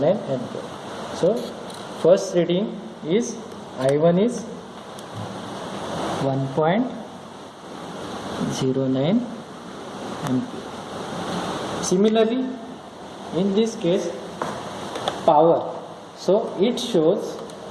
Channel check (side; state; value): both; identical; correlation 1.00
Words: ampere. So first reading is I1 is 1.09 ampere. Similarly, in this case, power. So it shows